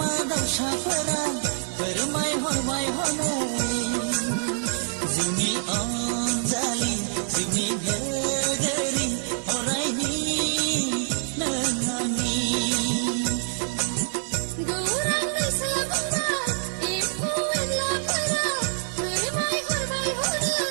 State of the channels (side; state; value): left; silent; digital silence